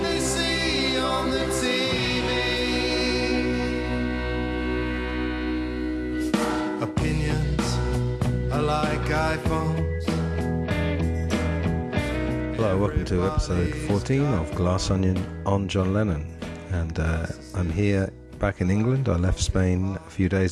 they see on the TV. Opinions are like iPhones. Hello, welcome to episode 14 of Glass Onion on John Lennon. And I'm here back in England. I left Spain a few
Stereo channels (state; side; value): identical; both; correlation 1.00